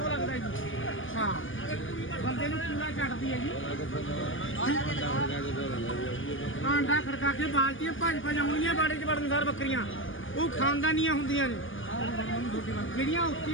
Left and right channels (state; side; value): late; right; 0.57 ms